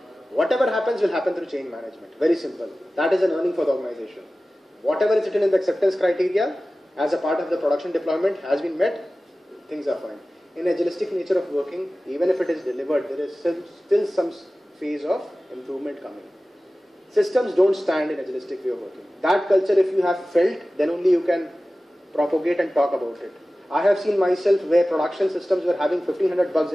Whatever happens will happen through change management. Very simple. That is an earning for the organization. Whatever is written in the acceptance criteria as a part of the production deployment has been met, things are fine. In agilistic nature of working, even if it is delivered, there is still some phase of improvement coming. Systems don't stand in agilistic way of working. That culture, if you have felt, then only you can propagate and talk about it. I have seen myself where production systems were having 1500 bugs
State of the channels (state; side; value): normal; both; correlation 0.96